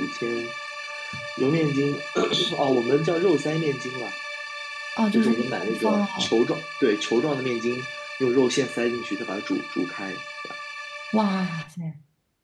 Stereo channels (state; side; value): identical; both; correlation 1.00